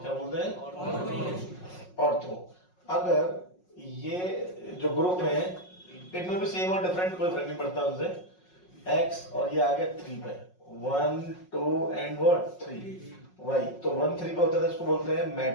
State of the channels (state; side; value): late; right; 5.5 ms